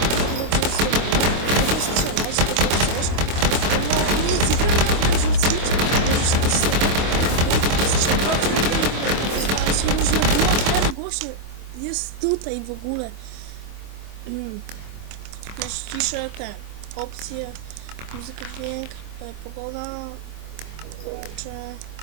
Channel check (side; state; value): left; late; 25 ms